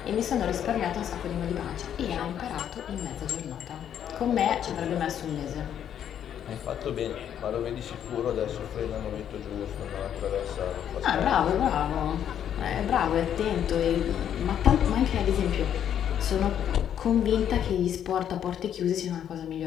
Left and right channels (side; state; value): right; quieter; 9.6 dB